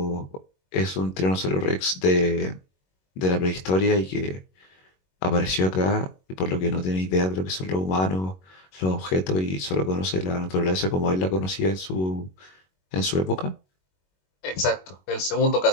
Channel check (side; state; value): right; late; 21 ms